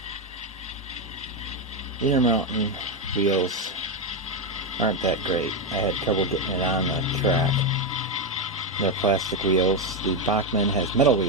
Intermountain wheels aren't that great. I had trouble getting it on the track. They're plastic wheels. The Bachmann has metal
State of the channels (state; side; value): normal; both; correlation 0.07